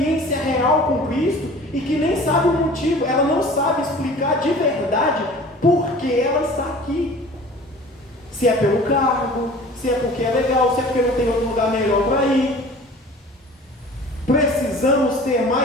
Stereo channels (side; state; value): both; normal; correlation 0.44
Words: real com Cristo e que nem sabe o motivo, ela não sabe explicar de verdade por que ela está aqui. Se é pelo cargo, se é porque é legal, se é porque não tem outro lugar melhor para ir. Precisamos ter